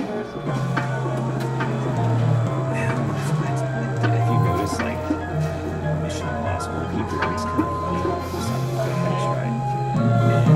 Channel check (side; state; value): both; identical; correlation 1.00